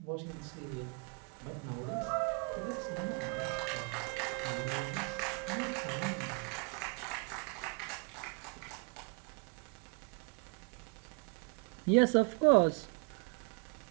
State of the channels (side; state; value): left; quieter; 37.5 dB